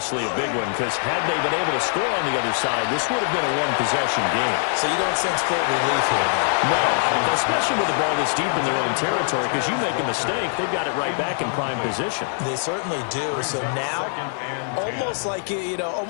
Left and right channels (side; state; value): right; silent; digital silence